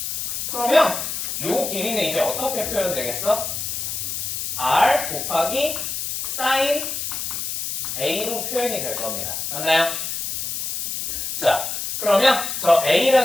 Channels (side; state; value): left; noise; hiss, 3 dB below the sound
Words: 그러면 요 길이는 이제 어떻게 표현되겠어? R 곱하기 sin A로 표현이 될 겁니다. 맞나요? 자, 그러면 저